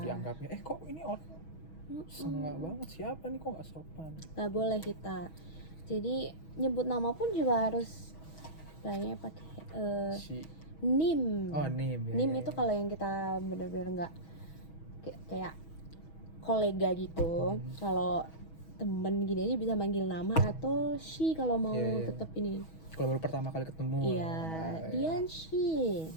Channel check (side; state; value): right; late; 6.2 ms